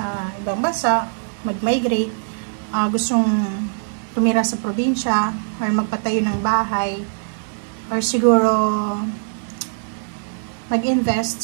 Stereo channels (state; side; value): silent; left; 59 dB below the other